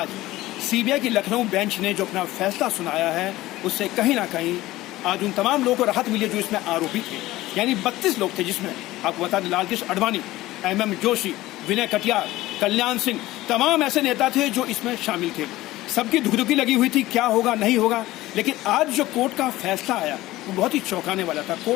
सीबीआई की लखनऊ बेंच ने जो अपना फैसला सुनाया है, उससे कहीं ना कहीं आज उन तमाम लोगों को राहत मिली जो इसमें आरोपी थे। यानी 32 लोग थे, जिसमें आपको बता दें लालकृष्ण आडवाणी, MM जोशी, विनय कटियार, कल्याण सिंह, तमाम ऐसे नेता थे जो इसमें शामिल थे। सबकी धुकधुकी लगी हुई थी क्या होगा नहीं होगा, लेकिन आज जो कोर्ट का फैसला आया वो बहुत ही चौंकाने वाला था।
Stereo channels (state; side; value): quieter; right; 17.1 dB